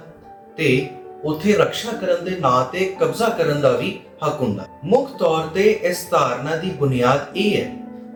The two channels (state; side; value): identical; both; correlation 1.00